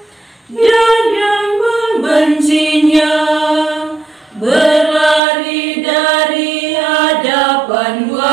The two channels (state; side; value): drops out; left; at 5.2 s